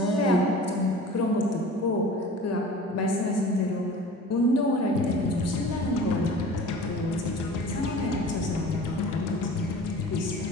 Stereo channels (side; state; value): both; normal; correlation 0.41